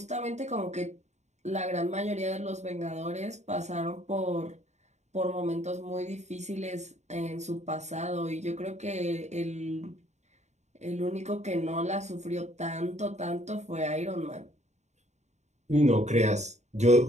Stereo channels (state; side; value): late; left; 0.33 ms